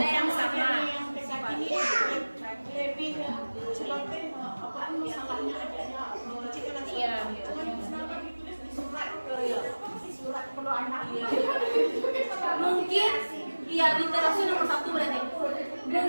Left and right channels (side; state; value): both; inverted; correlation -1.00